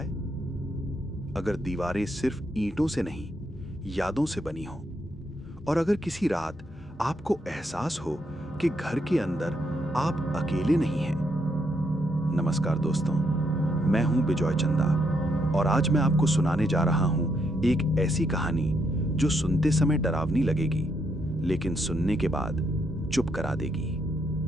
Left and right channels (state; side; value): normal; both; correlation 0.77